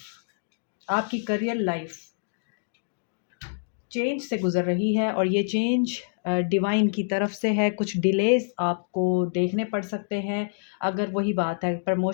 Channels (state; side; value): silent; right; digital silence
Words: आपकी करियर लाइफ चेंज से गुज़र रही है और ये चेंज डिवाइन की तरफ से है। कुछ डिलेज़ आपको देखने पड़ सकते हैं। अगर वही बात है,